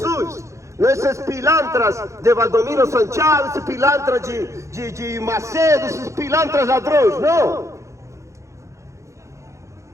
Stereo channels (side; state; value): left; late; 0.15 ms